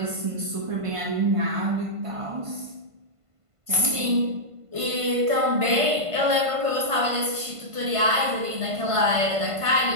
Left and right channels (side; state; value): left; late; 1.5 ms